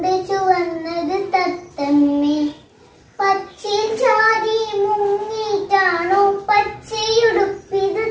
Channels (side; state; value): both; identical; correlation 1.00